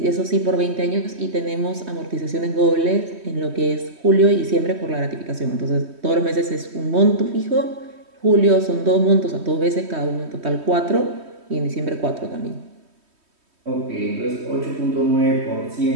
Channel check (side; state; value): left; late; 3.2 ms